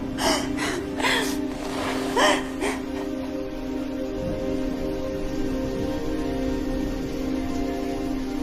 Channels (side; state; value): both; identical; correlation 1.00